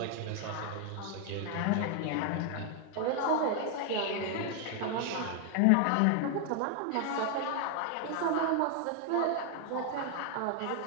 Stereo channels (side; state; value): both; different; correlation 0.00